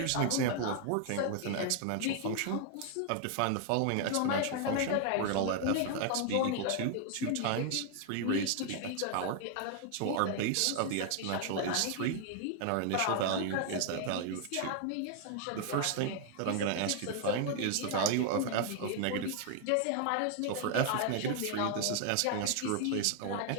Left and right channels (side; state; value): both; different; correlation 0.00